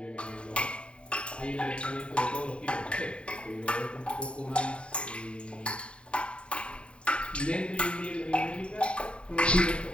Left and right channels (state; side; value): late; right; 0.056 ms